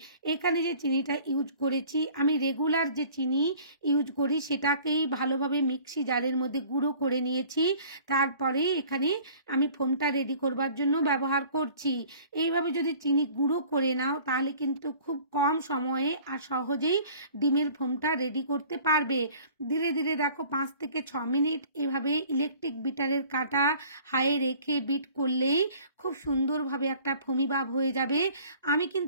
এখানে যে চিনিটা ইউজ করেছি আমি রেগুলার যে চিনি ইউজ করি সেটাকেই ভালোভাবে মিক্সি জারের মধ্যে গুঁড়ো করে নিয়েছি। তারপরে এখানে আমি ফোমটা রেডি করবার জন্য ব্যবহার করছি। এইভাবে যদি চিনি গুঁড়ো করে নাও তাহলে কিন্তু খুব কম সময়ে আর সহজেই ডিমের ফোমটা রেডি করতে পারবে। ধীরে ধীরে দেখো 5 থেকে 6 মিনিট এভাবে ইলেকট্রিক বিটারের কাঁটা হাইয়ে রেখে বিট করলেই খুব সুন্দরভাবে একটা ফোমি ভাব হয়ে যাবে। আমি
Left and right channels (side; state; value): both; inverted; correlation -0.50